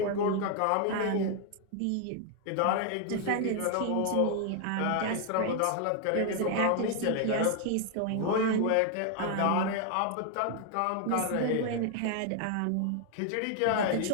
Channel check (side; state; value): both; different; correlation 0.00